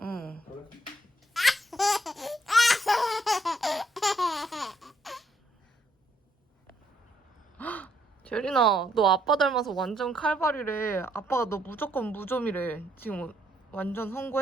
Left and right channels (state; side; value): normal; both; correlation 0.72